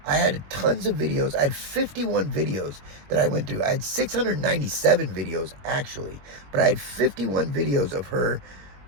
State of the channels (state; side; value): late; left; 21 ms